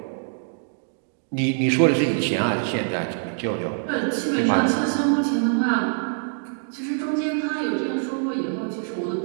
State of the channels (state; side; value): silent; left; digital silence